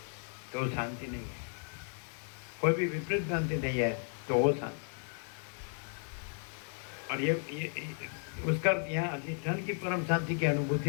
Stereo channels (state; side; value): silent; right; 55 dB below the other